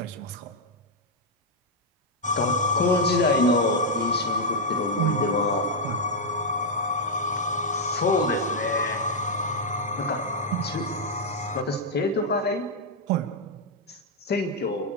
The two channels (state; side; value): normal; both; correlation -0.02